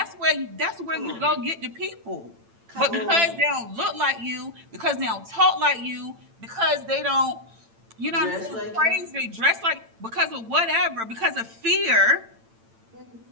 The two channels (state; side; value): late; left; 8.9 ms